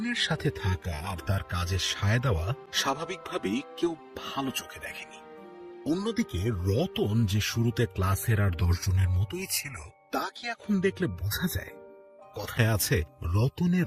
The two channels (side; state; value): both; identical; correlation 1.00